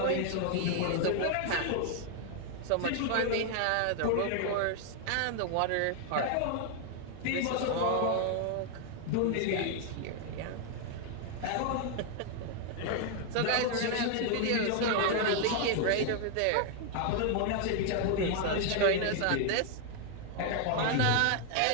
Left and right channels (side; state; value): both; different; correlation 0.00